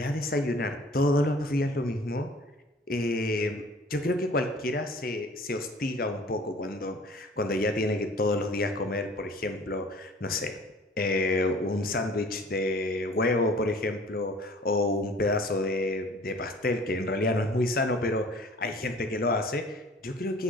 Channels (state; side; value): normal; both; correlation 0.49